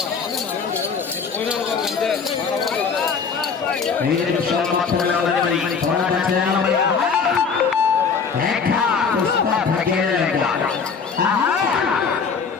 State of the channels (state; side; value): quieter; right; 5.7 dB